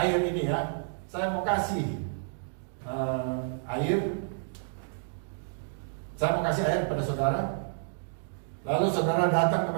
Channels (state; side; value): silent; left; digital silence